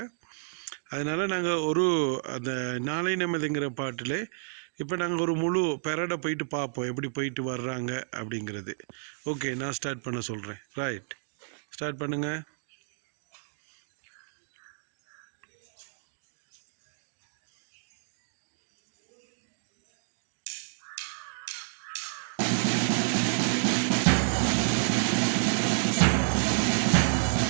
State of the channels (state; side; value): silent; left; digital silence